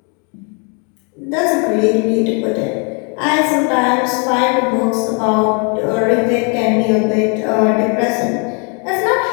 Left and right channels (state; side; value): quieter; right; 36.3 dB